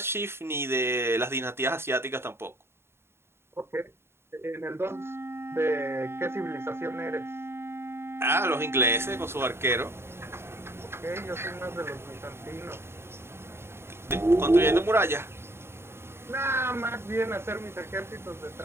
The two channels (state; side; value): late; left; 0.12 ms